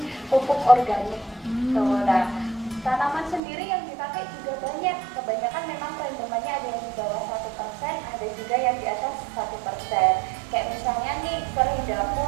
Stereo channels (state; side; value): drops out; left; at 3.4 s